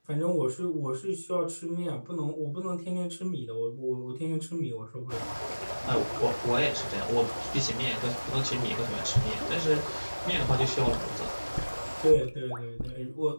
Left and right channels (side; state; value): both; inverted; correlation -1.00